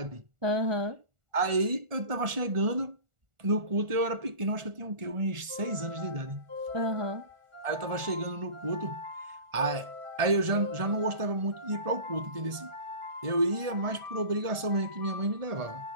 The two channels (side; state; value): left; late; 1.4 ms